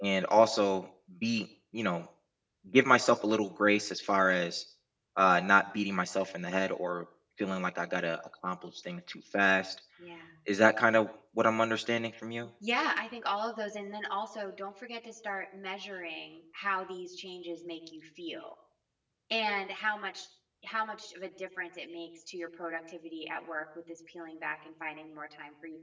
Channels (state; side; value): identical; both; correlation 1.00